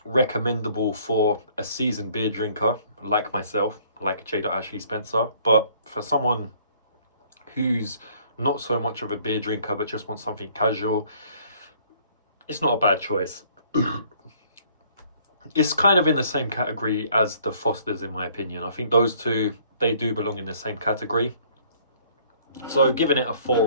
recommendable for a seasoned beer drinker like myself, like J. Ashley Spencer, but for someone who's not so much of a beer drinker but just wants something casual, it's not a bad choice. It's kind of in the same category as the Fosters, in my opinion. I think those two, they do belong in the same category. So giving it a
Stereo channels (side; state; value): both; inverted; correlation -0.59